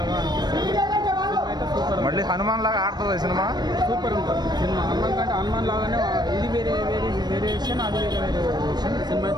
మళ్ళీ హనుమాన్ లాగా ఆడుతుంది సినిమా. సూపర్ ఉంటుంది సినిమా. హనుమాన్ కంటే హనుమాన్ లాగానే ఇది వేరియేషన్, అది వేరియేషన్. సినిమా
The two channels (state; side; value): late; left; 0.20 ms